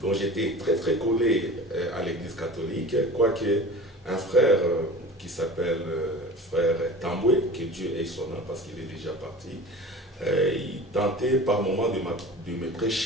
j'étais très très collé à l'église catholique, quoique un frère qui s'appelle frère Tamboué, que Dieu ait son âme parce qu'il est déjà parti, il tentait par moments de me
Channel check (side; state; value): both; normal; correlation 0.37